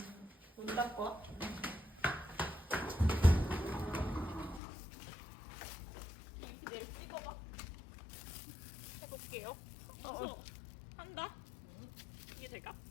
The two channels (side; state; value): right; drops out; at 4.6 s